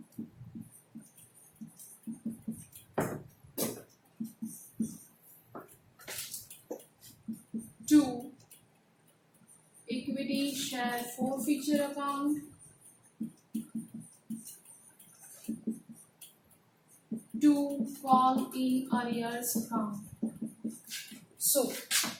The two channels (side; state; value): both; identical; correlation 1.00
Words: Two, equity share forfeiture account. Two, call in arrears account. So